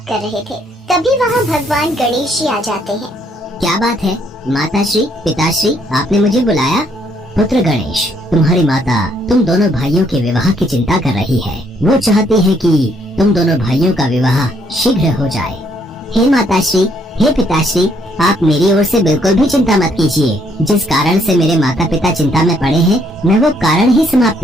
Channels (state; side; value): normal; both; correlation 0.69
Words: कर रहे थे। तभी वहाँ भगवान गणेश जी आ जाते हैं। क्या बात है माताश्री, पिताश्री, आपने मुझे बुलाया? पुत्र गणेश, तुम्हारी माता तुम दोनों भाइयों के विवाह की चिंता कर रही है। वो चाहती है कि तुम दोनों भाइयों का विवाह शीघ्र हो जाए। हे माताश्री, हे पिताश्री, आप मेरी ओर से बिल्कुल भी चिंता मत कीजिए। जिस कारण से मेरे माता पिता चिंता में पड़े हैं, मैं वो कारण ही समाप्त